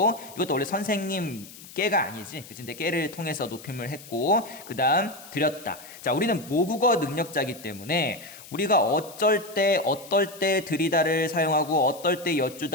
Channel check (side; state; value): left; noise; hiss, 18 dB below the sound